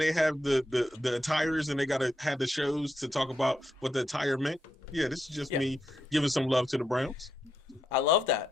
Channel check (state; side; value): normal; both; correlation 0.82